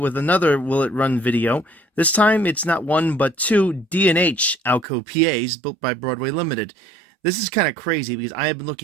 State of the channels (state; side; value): drops out; left; at 4.9 s